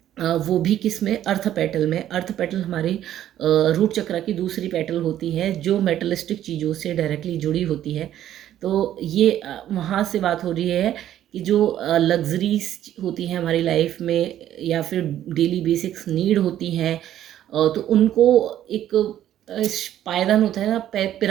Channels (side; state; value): left; quieter; 11.8 dB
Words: वो भी किस में, अर्थ पेटल में। अर्थ पेटल हमारी रूट चक्रा की दूसरी पेटल होती है जो मेटलिस्टिक चीज़ों से डायरेक्टली जुड़ी होती है। तो ये वहाँ से बात हो रही है कि जो लग्जरीज होती हैं हमारी लाइफ में, या फिर डेली बेसिक्स नीड होती हैं, तो उनको एक पायदान होता है ना,